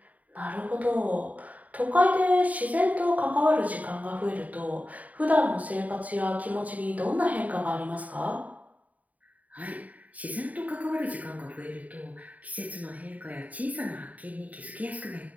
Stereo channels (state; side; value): late; left; 0.072 ms